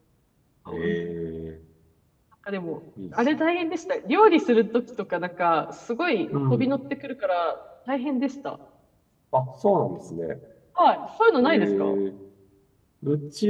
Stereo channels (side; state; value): both; identical; correlation 1.00